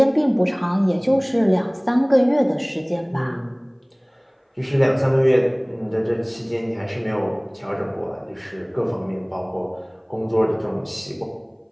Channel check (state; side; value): identical; both; correlation 1.00